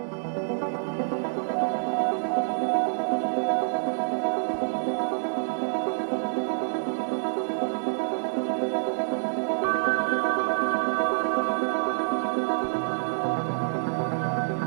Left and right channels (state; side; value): silent; left; digital silence